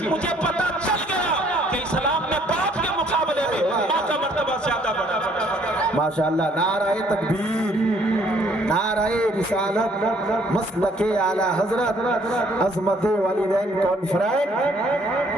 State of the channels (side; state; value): both; normal; correlation 0.63